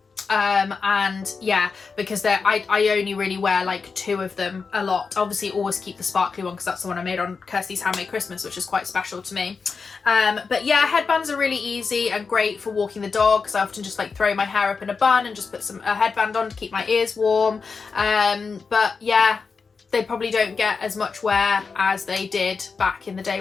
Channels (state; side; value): quieter; right; 5.0 dB